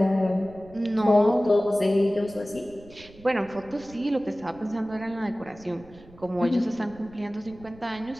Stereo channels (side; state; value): right; noise; rumble, 22 dB below the sound